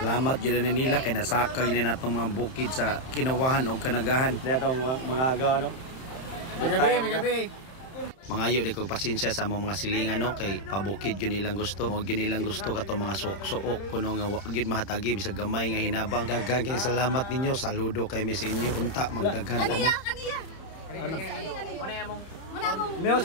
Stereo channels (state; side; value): late; right; 31 ms